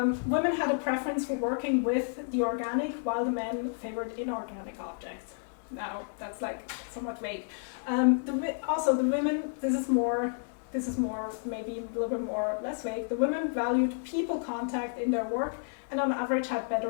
had a preference for working with the organic while the men favored inorganic objects. Now that's like somewhat vague. Also the women, this is more maybe a little bit more less vague. The women valued people contact in their work and on average had better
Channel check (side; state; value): right; silent; digital silence